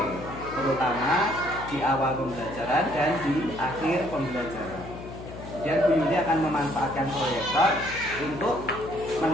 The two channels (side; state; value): left; noise; hum, 12 dB below the sound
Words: terutama di awal pembelajaran dan di akhir pembelajaran. Kemudian Bu Yuli akan memanfaatkan proyektor untuk